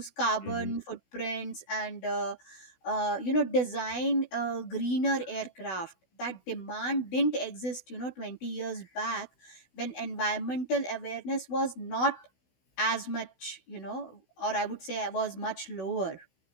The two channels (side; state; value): right; late; 16 ms